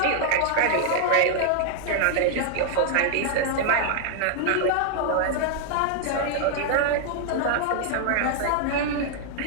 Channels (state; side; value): different; both; correlation -0.01